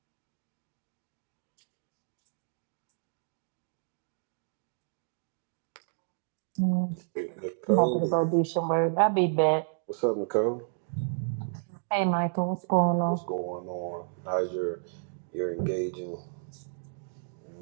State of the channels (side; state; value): left; silent; digital silence